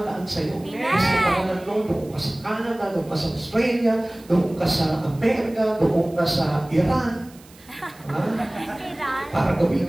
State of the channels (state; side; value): noise; right; hiss, 25 dB below the sound